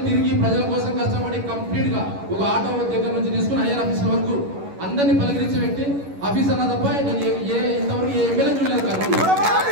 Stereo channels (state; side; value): late; left; 11 ms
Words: తిరిగి ప్రజల కోసం కష్టపడి కంప్లీట్ గా ఒక ఆటో దగ్గర నుంచి తీసుకుని హైయర్ ఆఫీసర్ వరకు అందరినీ పలకరించే వ్యక్తి ఆఫీసర్ అన్న తప్ప నేను ఇంతవరకు ఏ ఎమ్మెల్యే చూడలేదు కర్నూలు.